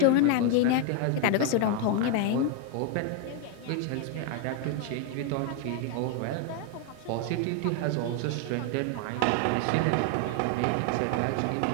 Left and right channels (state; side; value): different; both; correlation 0.01